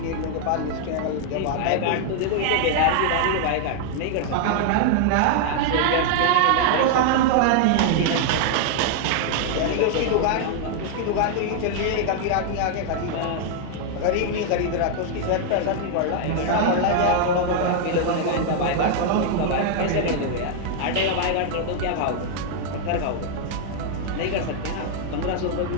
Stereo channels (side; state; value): both; different; correlation 0.00